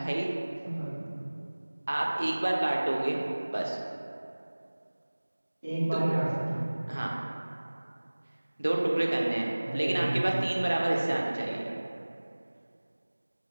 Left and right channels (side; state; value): both; inverted; correlation -1.00